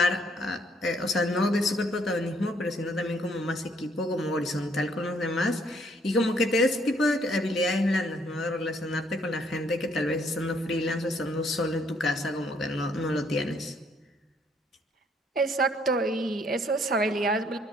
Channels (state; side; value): normal; both; correlation 0.67